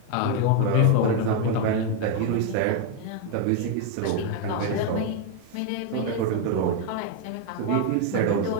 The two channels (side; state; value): both; different; correlation 0.01